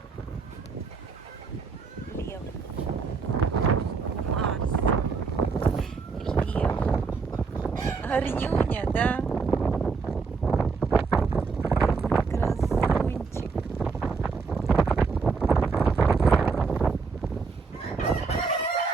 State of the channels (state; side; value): quieter; left; 4.9 dB